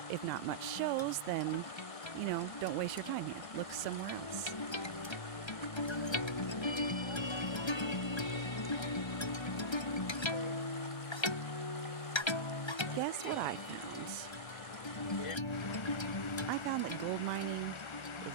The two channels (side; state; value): right; late; 1.3 ms